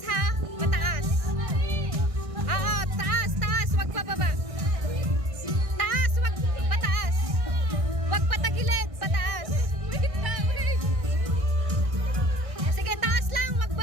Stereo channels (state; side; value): late; left; 1.6 ms